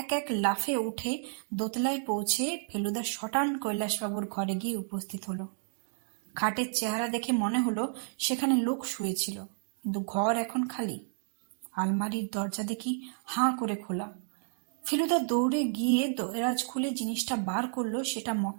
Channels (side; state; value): left; silent; digital silence